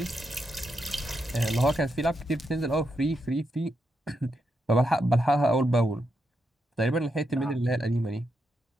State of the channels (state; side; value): normal; both; correlation 0.83